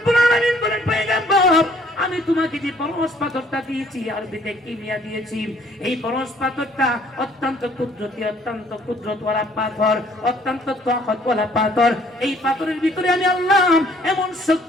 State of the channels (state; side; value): normal; both; correlation 0.60